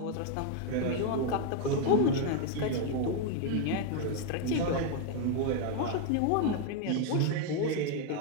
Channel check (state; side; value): different; both; correlation 0.01